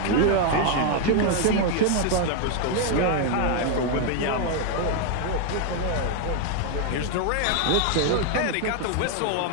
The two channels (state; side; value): different; both; correlation 0.01